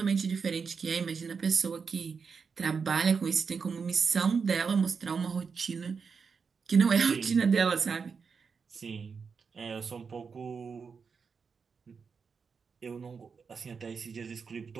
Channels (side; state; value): left; quieter; 5.6 dB